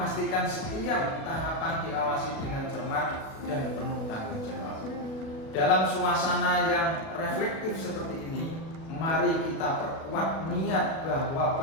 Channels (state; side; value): late; right; 37 ms